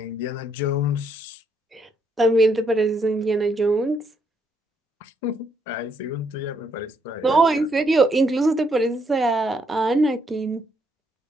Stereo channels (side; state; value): both; normal; correlation 0.74